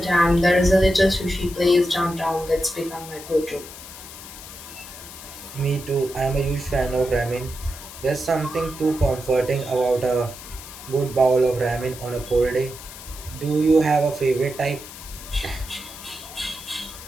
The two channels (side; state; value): left; noise; hiss, 14 dB below the sound